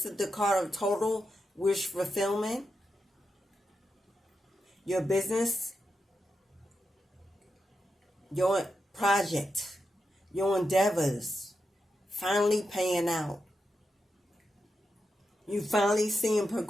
is the card of total wish fulfillment. Your business, your project, your endeavors, finally paying out. You finally seeing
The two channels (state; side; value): normal; both; correlation 0.87